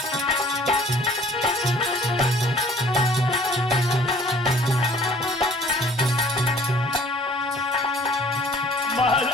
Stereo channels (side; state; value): both; normal; correlation 0.53